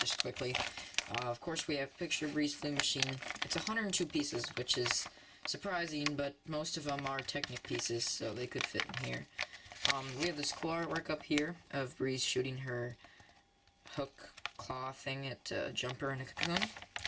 quickly. Of course, we have Picture BREEZ Flea Machine. It's 102 pieces, which is surprising, but most of them are Technic pieces, so they could fit in here. We have this cool artwork up here of BREEZ shooting her hook claw thing at a jumper in a cocoon.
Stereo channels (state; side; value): identical; both; correlation 1.00